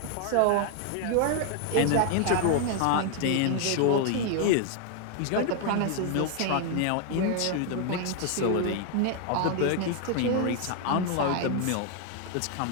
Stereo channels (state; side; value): different; both; correlation 0.00